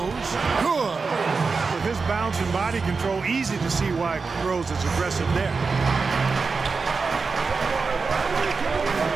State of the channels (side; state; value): left; quieter; 4.6 dB